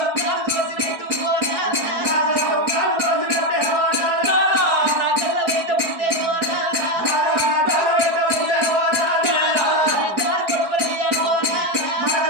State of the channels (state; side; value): late; left; 4.8 ms